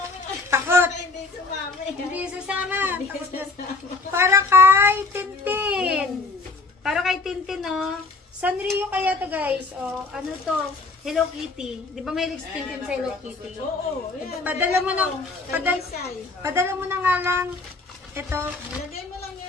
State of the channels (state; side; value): quieter; right; 3.6 dB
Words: ko. Takot. Hindi sumama eh. Hindi sasama. Takot na. Para kay Tintin. Para kay Tintin, no? Sanrio kaya to, guys. O, ano to? Hello Kitty. Di ba may si Tintin sa Hello Kitty? Oo. Yan, Padala mo na. Talisay. Padala mo na nga lang. Ito. Lagay mo lang